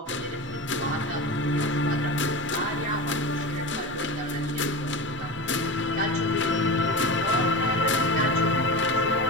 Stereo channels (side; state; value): both; normal; correlation 0.26